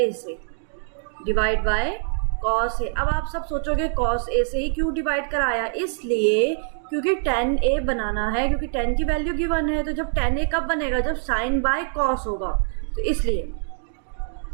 a से, डिवाइड बाय कॉस a। अब आप सब सोचोगे कॉस a से ही क्यों डिवाइड कराया, इसलिए क्योंकि tan a बनाना है, क्योंकि tan की वैल्यू गिवन है, तो जब tan a कब बनेगा, जब साइन बाय कॉस होगा, तो इसलिए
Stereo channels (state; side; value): silent; left; 63 dB below the other